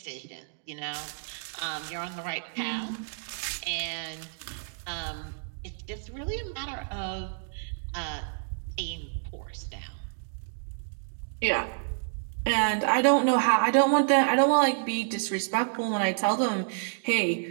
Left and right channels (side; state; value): left; silent; digital silence